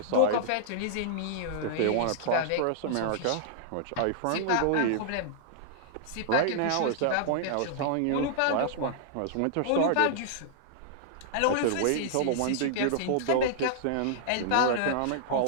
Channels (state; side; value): different; both; correlation -0.01